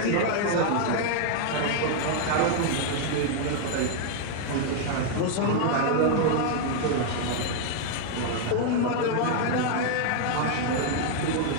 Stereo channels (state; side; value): different; both; correlation 0.00